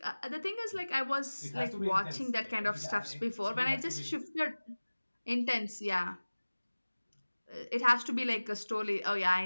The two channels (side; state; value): both; inverted; correlation -1.00